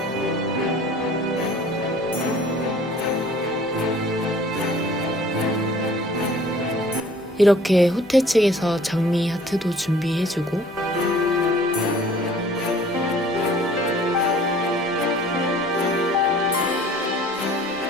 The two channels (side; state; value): both; normal; correlation 0.52